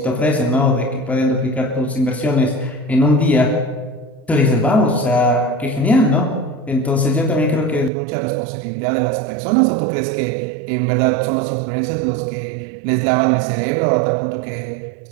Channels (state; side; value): drops out; left; at 7.9 s